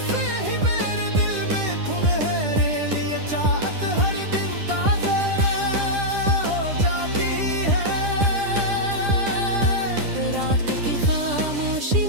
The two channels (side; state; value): left; late; 10 ms